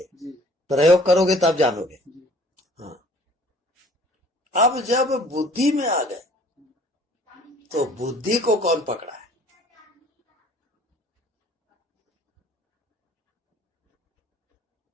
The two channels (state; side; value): normal; both; correlation 0.53